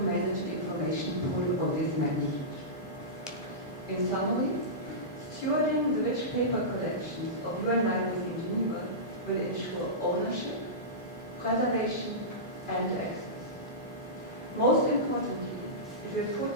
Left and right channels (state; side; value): normal; both; correlation -0.17